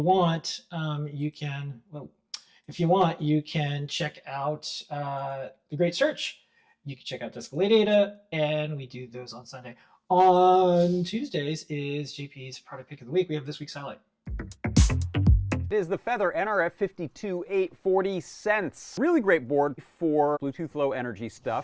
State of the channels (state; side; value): identical; both; correlation 1.00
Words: want, you can check out the great search. You can check out Ladyada, and we do those on Sunday. On Tuesdays is JP's product pick of the week. We have this week's highlight. It is the Feather NRF 52840 cents. Really great board for Bluetooth Low Energy